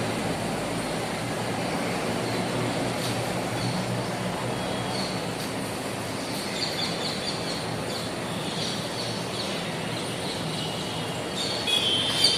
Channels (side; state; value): both; identical; correlation 1.00